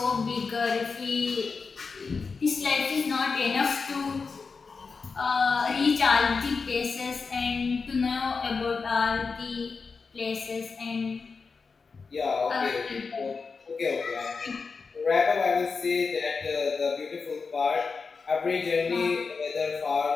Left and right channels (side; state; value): right; quieter; 4.8 dB